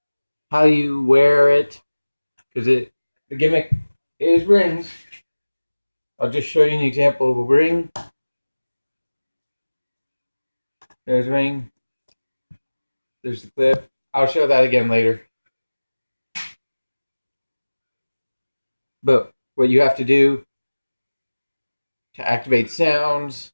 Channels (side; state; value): both; inverted; correlation -1.00